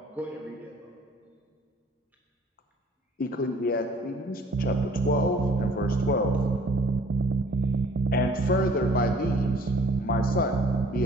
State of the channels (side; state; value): both; normal; correlation 0.57